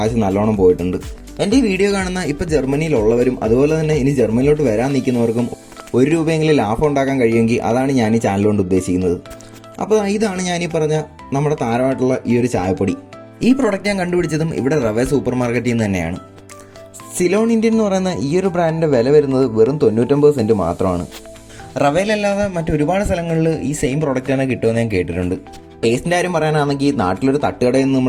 നല്ലോണം പോയിട്ടുണ്ട്. എൻ്റെ ഈ വീഡിയോ കാണുന്ന ഇപ്പോൾ ജർമ്മനിയിലുള്ളവരും അതുപോലെ തന്നെ ഇനി ജർമ്മനിലോട്ട് വരാൻ നിൽക്കുന്നവർക്കും ₹1 ലാഭം ഉണ്ടാക്കാൻ കഴിയുമെങ്കിൽ അതാണ് ഞാൻ ഈ ചാനൽ കൊണ്ട് ഉദ്ദേശിക്കുന്നത്. അപ്പോൾ ഇതാണ് ഞാനീ പറഞ്ഞ നമ്മുടെ താരമായിട്ടുള്ള ഈ ഒരു ചായപ്പൊടി. ഈ പ്രോഡക്റ്റ് ഞാൻ കണ്ടുപിടിച്ചതും ഇവിടെ റവേ സൂപ്പർ മാർക്കറ്റിൽ നിന്ന് തന്നെയാണ്. സിലോൺ ഇന്ത്യൻ എന്ന് പറയുന്ന ഈ ഒരു ബ്രാൻഡിൻ്റെ വില വരുന്നത് വെറും 99 സെൻറ്റ് മാത്രമാണ്. റവയിലല്ലാതെ മറ്റൊരുപാട് സ്ഥലങ്ങളിൽ ഈ സെയിം പ്രോഡക്റ്റ് തന്നെ കിട്ടുമെന്ന് ഞാൻ കേട്ടിട്ടുണ്ട്. ടേസ്റ്റിൻ്റെ കാര്യം പറയാനാണെങ്കിൽ നാട്ടിലൊരു തട്ടുകടയിൽ നിന്ന്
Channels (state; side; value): identical; both; correlation 1.00